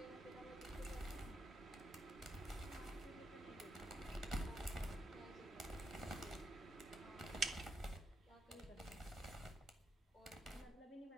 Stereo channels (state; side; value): normal; both; correlation 0.80